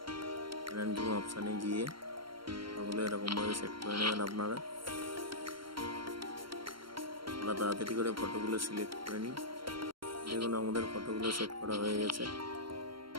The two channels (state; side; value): late; left; 0.73 ms